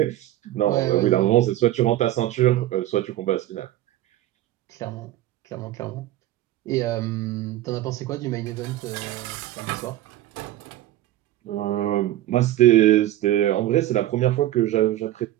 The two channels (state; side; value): quieter; left; 14.4 dB